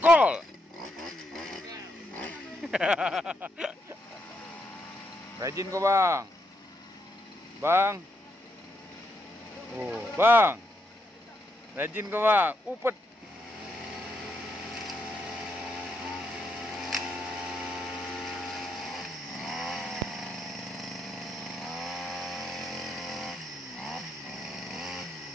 Rajin kok, Bang. Bang. Oh, Bang. Rajin kok, Bang. Upet.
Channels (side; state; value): both; normal; correlation 0.79